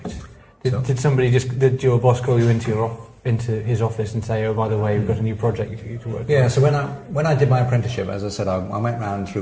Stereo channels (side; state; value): both; identical; correlation 1.00